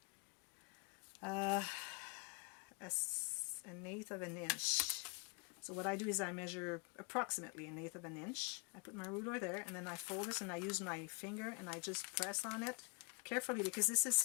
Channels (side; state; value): right; quieter; 34.1 dB